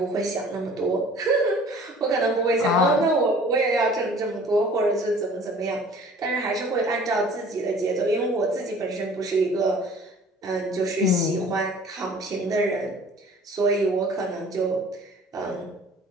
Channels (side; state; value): both; normal; correlation 0.49